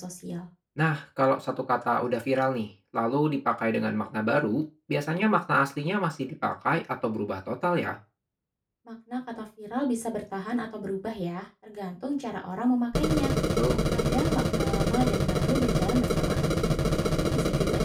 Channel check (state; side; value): identical; both; correlation 1.00